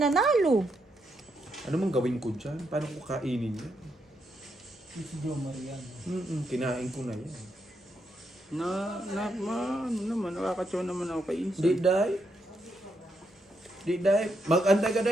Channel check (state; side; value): normal; both; correlation 0.80